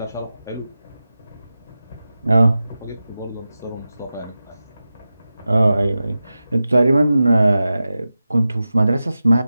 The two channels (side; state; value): both; inverted; correlation -0.94